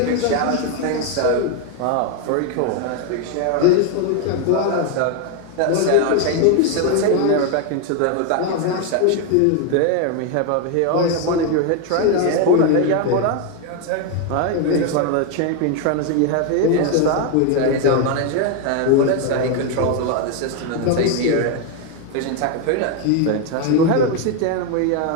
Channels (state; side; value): different; both; correlation 0.01